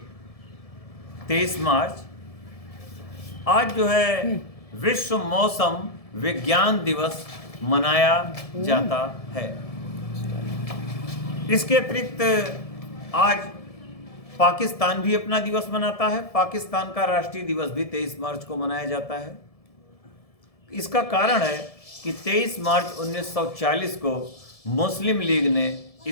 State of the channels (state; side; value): late; right; 1.7 ms